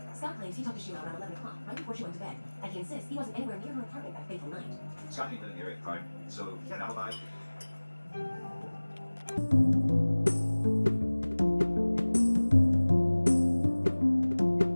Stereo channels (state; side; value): inverted; both; correlation -1.00